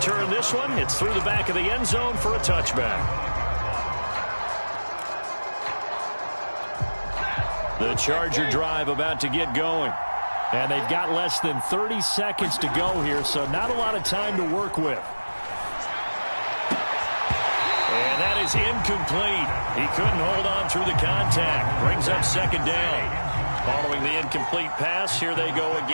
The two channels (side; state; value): both; inverted; correlation -1.00